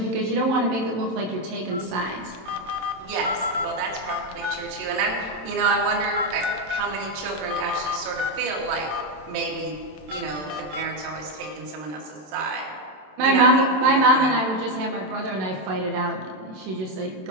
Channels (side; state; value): left; late; 27 ms